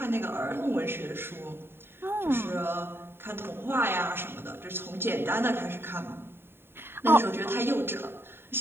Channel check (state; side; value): late; left; 0.11 ms